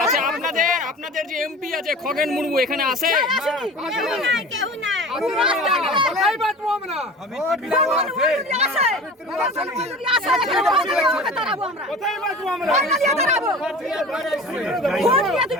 আচ্ছা আপনাদের যে এমপি আছে খগেন মুর্মু এখানে আসে?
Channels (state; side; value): normal; both; correlation 0.38